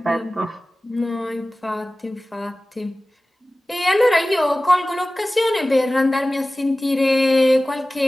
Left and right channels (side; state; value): both; normal; correlation 0.97